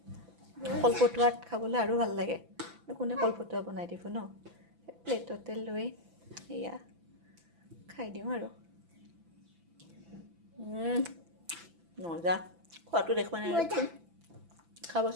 কলপতুৱাত খাবলৈ আৰু ভাল লাগে। কোনে কলপতুৱা বনাই দিব ন? প্লেটতে লৈ এয়া খাই দিওঁ আৰু। মজা। খোৱাটো দেখুৱা নাই।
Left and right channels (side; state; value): left; late; 6.0 ms